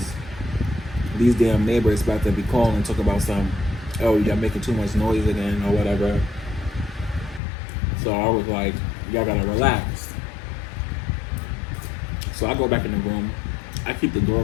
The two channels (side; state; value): right; drops out; at 7.4 s